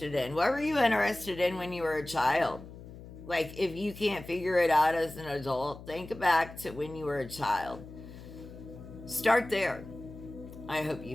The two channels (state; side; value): noise; left; hum, 15 dB below the sound